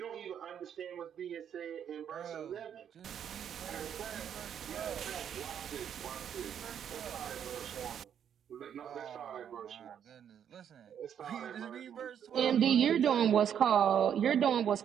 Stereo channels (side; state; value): left; quieter; 8.9 dB